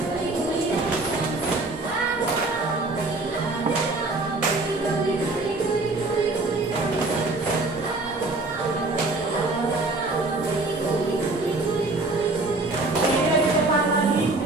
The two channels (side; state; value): left; quieter; 3.2 dB